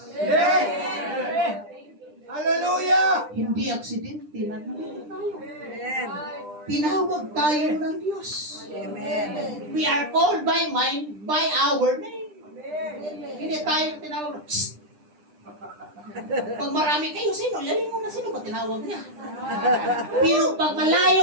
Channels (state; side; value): late; left; 9.9 ms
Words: Hallelujah! Hindi aksidente na tayo. Tinawag tayo ng Diyos. We are called by our name. Hindi tayo tinawag. Psst! Pag marami kayo, sino? Lalim mo na sino ba tinawag niya? Pero pag